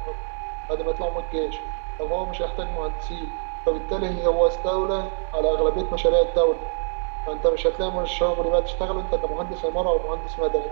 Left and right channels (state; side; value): silent; left; 62 dB below the other